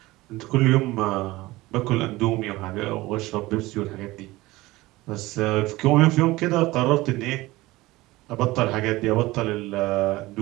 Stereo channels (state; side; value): quieter; left; 19.4 dB